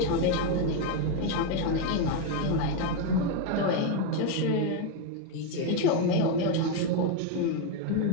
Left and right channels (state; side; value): different; both; correlation 0.02